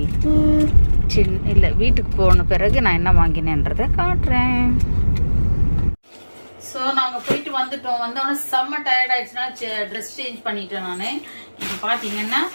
இல்லை வீட்டுக்கு போன பிறகு நான் என்ன வாங்கினேன்றதை காட்டுறேன். ஸோ நாங்கள் போயிட்டு வந்துட்டோம். வந்தோடனே செம்ம டயர்ட் ஆயிடுச்சுன்னா ட்ரெஸ் சேஞ்ச் பண்ணிட்டேன். நான் இப்போ பார்த்தீங்கன்னா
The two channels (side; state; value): both; inverted; correlation -1.00